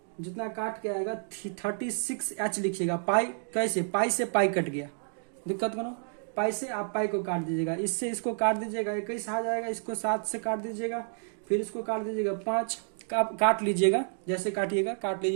जितना काट के आएगा 36H लिखिएगा, पाई कैसे, पाई से पाई कट गया, दिक्कत करो, पाई से आप पाई को काट दीजिएगा, इससे इसको काट दीजिएगा 21 आ जाएगा, इसको 7 से काट दीजिएगा, फिर इसको काट दीजिएगा 5, काट लीजिएगा, जैसे काटिएगा काट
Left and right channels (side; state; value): left; silent; digital silence